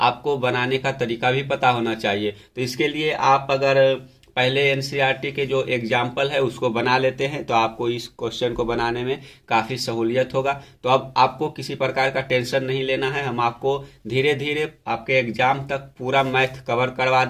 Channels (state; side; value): identical; both; correlation 1.00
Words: बनाने का तरीका भी पता होना चाहिए। तो इसके लिए आप अगर पहले एनसीईआरटी के जो एग्जाम्पल है उसको बना लेते हैं तो आपको इस क्वेश्चन को बनाने में काफ़ी सहूलियत होगा। तो अब आपको किसी प्रकार का टेंशन नहीं लेना है, हम आपको धीरे धीरे आपके एग्जाम तक पूरा मैथ कवर करवा